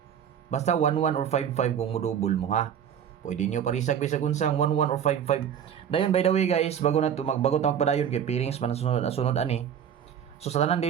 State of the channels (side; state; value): left; quieter; 8.7 dB